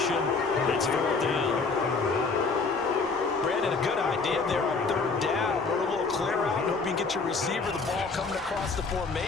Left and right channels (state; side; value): quieter; right; 4.3 dB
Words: It's 4th down. Brandon, a good idea there on 3rd down. Run a little clear out and hope you can get your receiver the ball coming across the